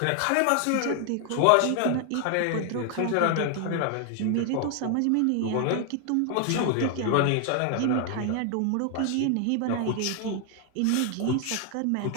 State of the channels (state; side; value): different; both; correlation 0.00